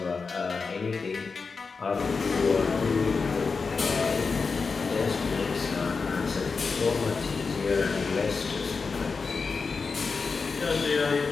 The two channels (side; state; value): right; quieter; 4.7 dB